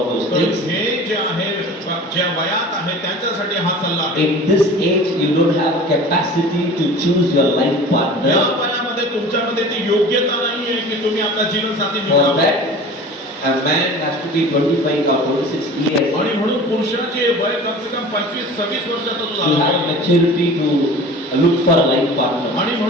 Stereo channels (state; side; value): normal; both; correlation 0.40